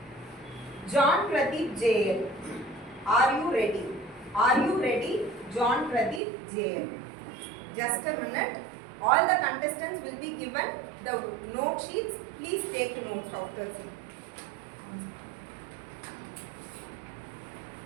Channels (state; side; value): drops out; left; at 6.2 s